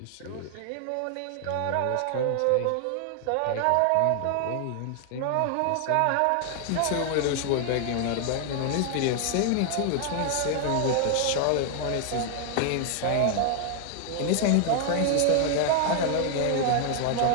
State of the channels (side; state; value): both; different; correlation 0.00